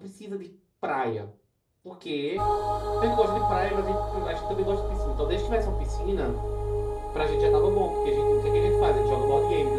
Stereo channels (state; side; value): identical; both; correlation 1.00